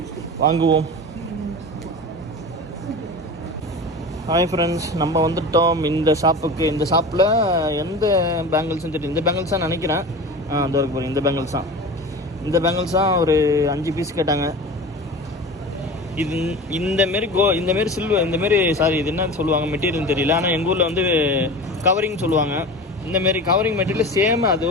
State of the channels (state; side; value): normal; both; correlation 0.33